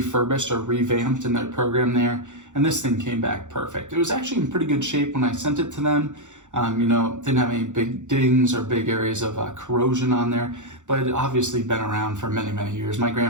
or revamped in their program there. And this thing came back perfect. It was actually in pretty good shape when I sent it to them. Didn't have any big dings or big areas of corrosion on there, but it obviously been around for many, many years. My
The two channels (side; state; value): left; late; 0.85 ms